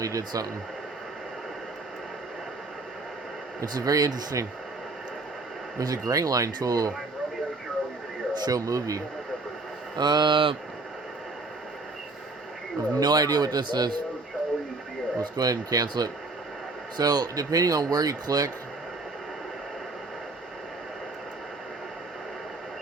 did something. It's very interesting. There's a gray line tool. Show movie. I have no idea what this is. Let's go ahead and cancel it. So, depending on where you click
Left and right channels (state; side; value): quieter; left; 3.4 dB